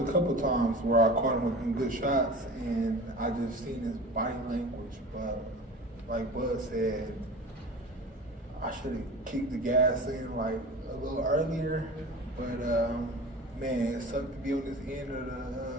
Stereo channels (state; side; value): normal; both; correlation 0.36